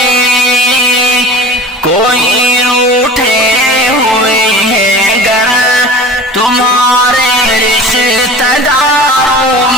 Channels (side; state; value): both; normal; correlation 0.39